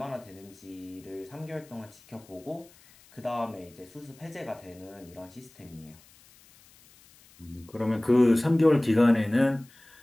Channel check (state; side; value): noise; left; hiss, 26 dB below the sound